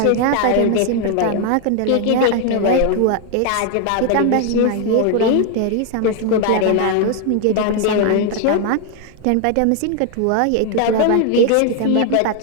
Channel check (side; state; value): both; different; correlation 0.00